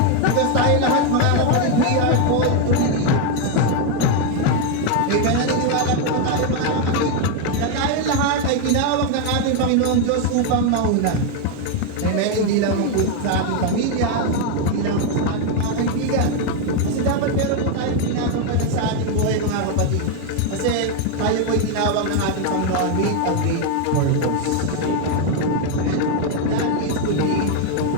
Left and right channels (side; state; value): both; different; correlation 0.01